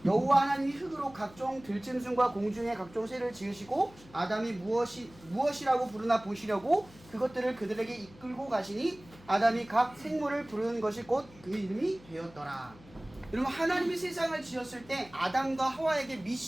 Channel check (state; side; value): noise; left; hum, 23 dB below the sound